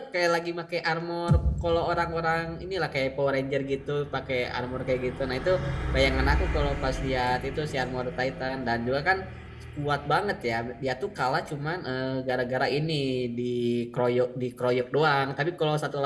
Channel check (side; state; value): both; identical; correlation 1.00